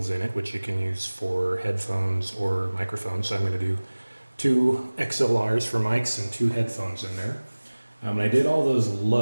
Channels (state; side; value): inverted; both; correlation -1.00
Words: in it, which you can use for headphones or microphones. So I'm going to do 2 XLRs for mics and 2 headphones in there. And I did all those